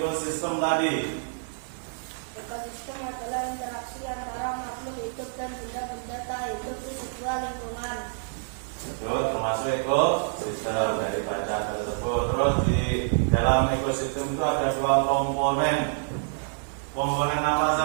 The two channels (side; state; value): left; silent; 60 dB below the other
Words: tadi? Ekosistem adalah interaksi antara makhluk hidup dan benda-benda tak hidup di sebuah lingkungan. Itu termasuk ekosistem dari baca tersebut. Terus di dalam ekosistem itu ada 2 komponen. Komponen apa